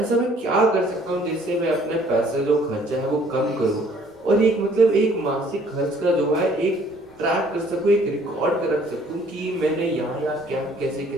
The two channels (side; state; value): both; normal; correlation 0.59